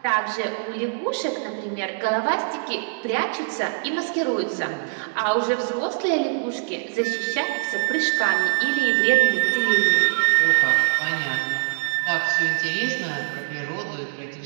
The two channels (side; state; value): left; silent; digital silence